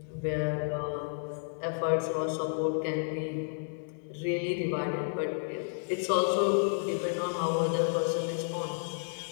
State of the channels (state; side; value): silent; right; digital silence